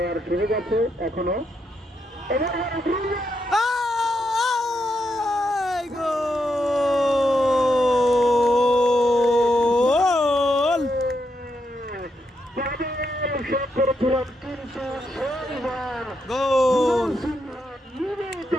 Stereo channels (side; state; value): both; normal; correlation 0.81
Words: সুযোগ আছে এখনো। করেছিলাম কিন্তু গোল